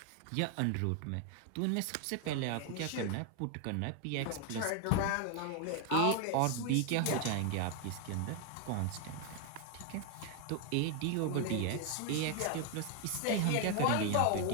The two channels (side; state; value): both; different; correlation 0.01